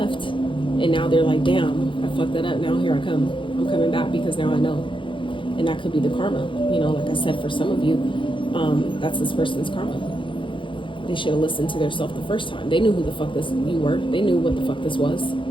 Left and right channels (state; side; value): late; right; 0.25 ms